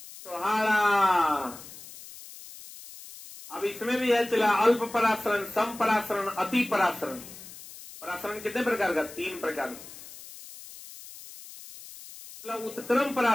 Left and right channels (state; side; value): noise; left; hiss, 16 dB below the sound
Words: छोहाड़ा। अब इसमें भी है चला अल्प परासरण, सम परासरण, अति परासरण। परासरण कितने प्रकार का? 3 प्रकार। उत्क्रम